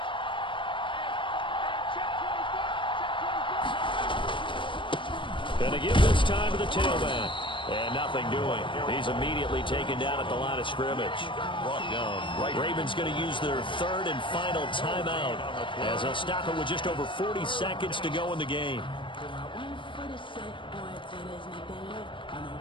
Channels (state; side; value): late; right; 0.24 ms